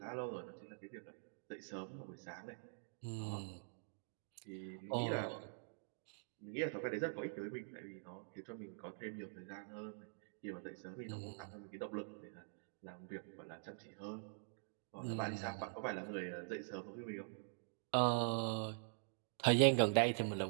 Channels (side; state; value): left; silent; digital silence